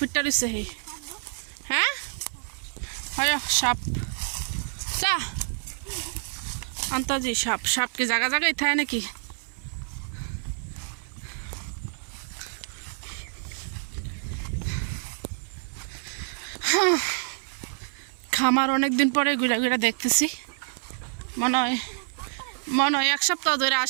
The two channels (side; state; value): left; silent; 60 dB below the other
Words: রয়েছে। হেই হ্যাঁ, হয় সাপ। চা আন্তাজি সাপ। সাপ কি জায়গা জায়গায় থাকে নাকি? খামার অনেক দিন পরে ঘুরে ঘুরে দেখতেছি। মনে হয় 1 সপ্তাহ ধরে